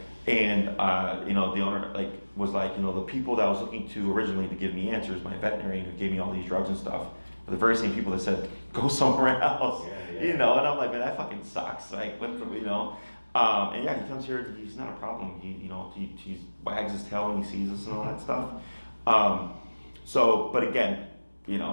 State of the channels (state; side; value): inverted; both; correlation -1.00